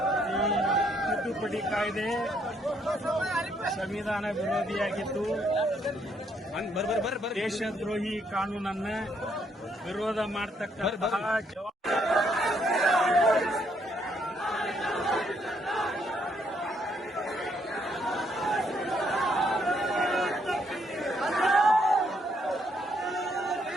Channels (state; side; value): normal; both; correlation 0.71